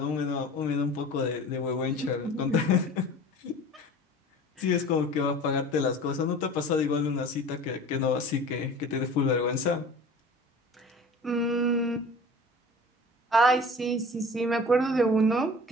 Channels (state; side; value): normal; both; correlation 0.41